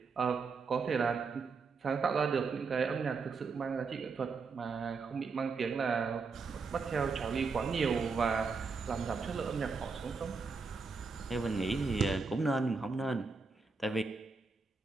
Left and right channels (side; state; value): left; quieter; 4.7 dB